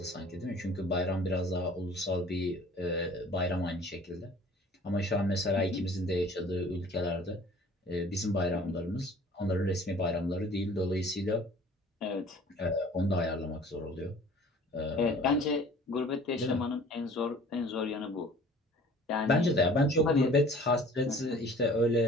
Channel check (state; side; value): normal; both; correlation 0.49